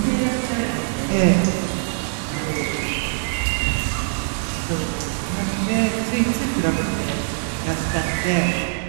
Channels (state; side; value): silent; left; 64 dB below the other